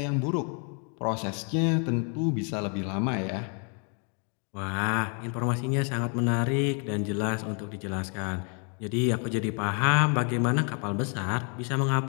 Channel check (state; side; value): quieter; right; 39.3 dB